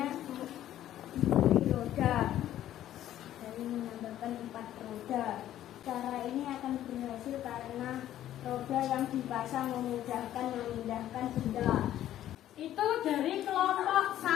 diberi roda, dari menambahkan 4 roda. Cara ini akan berhasil karena roda yang dipasang memudahkan memindahkan benda. Itu dari kelompok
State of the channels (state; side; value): quieter; right; 12.4 dB